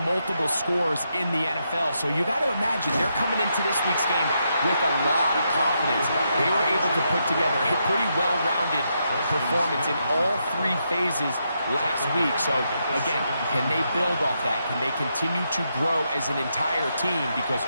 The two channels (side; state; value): both; inverted; correlation -0.81